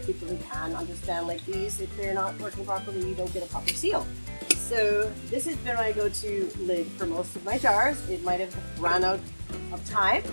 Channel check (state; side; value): inverted; both; correlation -1.00